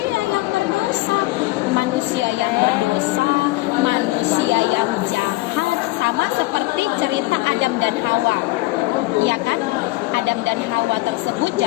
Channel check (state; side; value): quieter; right; 20.5 dB